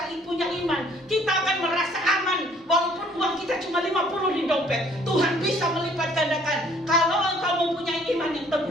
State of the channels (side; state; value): both; normal; correlation 0.59